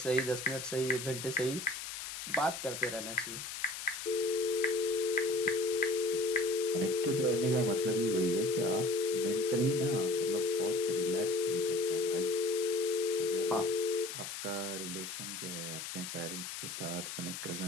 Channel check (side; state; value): left; noise; hiss, 7 dB below the sound